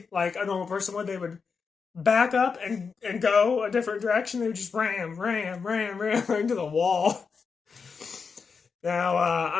like a normal person would. They would back up and go a different direction. They would just ram into the wall. Now,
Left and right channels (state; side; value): quieter; right; 5.4 dB